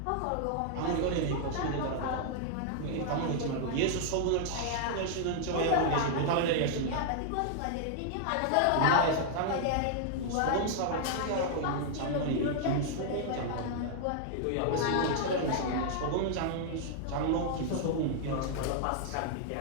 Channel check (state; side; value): different; both; correlation -0.01